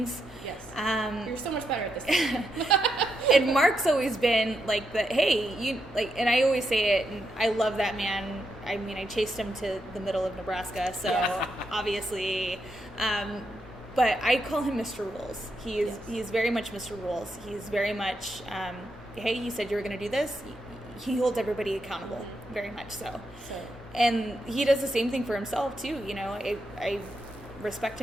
Yes. You're so much better at this. And Mark's always been like the, hey, you like, and I always say it, and I love that man. I mean, I chased him to the middle of Nebraska, so obviously, but I call him Mr. Rules. He is very much Mr. Rules. He's very much, hey, you said you were going to do this. He holds everybody accountable, very much so. And he does the same thing for himself too. I respect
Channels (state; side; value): normal; both; correlation 0.82